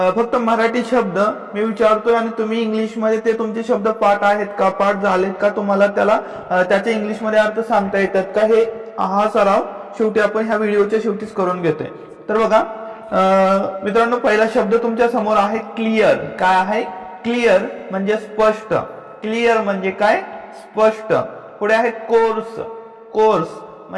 फक्त मराठी शब्द मी विचारतोय आणि तुम्ही इंग्लिश मध्ये ते तुमचे शब्द पाठ आहेत का, पाठ झालेत का, तुम्हाला त्याचे इंग्लिश मध्ये अर्थ सांगता येतात का, हे हा सराव शेवटी आपण ह्या व्हिडिओच्या शेवटीच करून घेतोय। तर बघा मित्रांनो, पहिला शब्द तुमच्या समोर आहे क्लिअर। काय आहे? क्लिअर म्हणजे स्पष्ट। क्लिअर म्हणजे काय? स्पष्ट। पुढे आहे कोर्स। कोर्स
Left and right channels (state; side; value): identical; both; correlation 1.00